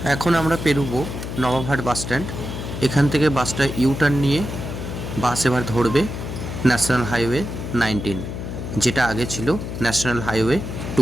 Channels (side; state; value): left; noise; hum, 6 dB below the sound